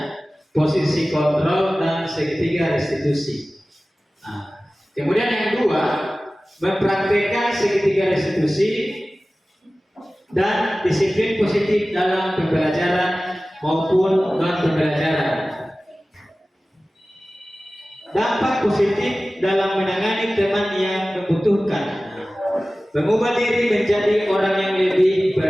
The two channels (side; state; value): both; normal; correlation 0.97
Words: posisi kontrol, dan segitiga restitusi. Kemudian yang kedua, mempraktikkan segitiga restitusi dan disiplin positif dalam pembelajaran maupun non pembelajaran. Dampak positif dalam menangani teman yang membutuhkan, mengubah diri menjadi orang yang lebih